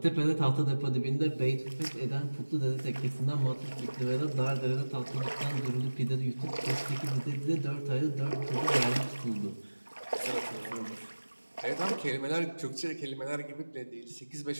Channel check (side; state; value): both; inverted; correlation -1.00